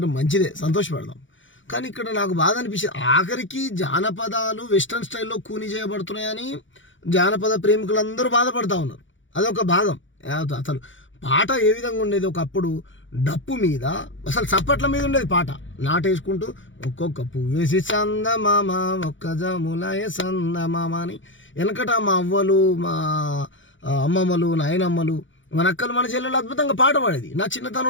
మంచిదే, సంతోషపడదాం. కానీ ఇక్కడ నాకు బాధ అనిపించింది, ఆఖరికి జానపదాలు వెస్టర్న్ స్టైల్లో కూని చేయబడుతున్నాయని జానపద ప్రేమికులందరూ బాధపడుతూ ఉన్నారు. అదొక భాగం. అసలు పాట ఏ విధంగా ఉండేది, ఒకప్పుడు డప్పు మీద అసలు చప్పట్ల మీద ఉండేది పాట. నాటేసుకుంటూ ఒక్కొక్క పువ్వేసి సందమామ ఒక్క జములయ సందమామ అని వెనకట మా అవ్వలు, మా అమ్మమ్మలు, నాయనమ్మలు, మన అక్కలు, మన చెల్లెలు అద్భుతంగా పాట పాడేది. నా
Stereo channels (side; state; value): right; late; 0.56 ms